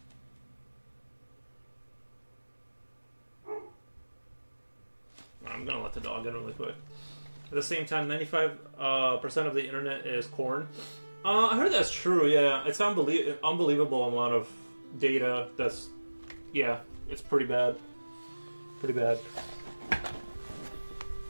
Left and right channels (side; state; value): both; inverted; correlation -1.00